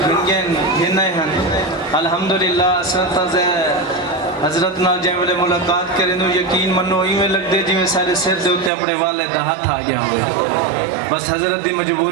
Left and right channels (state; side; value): drops out; left; at 8.7 s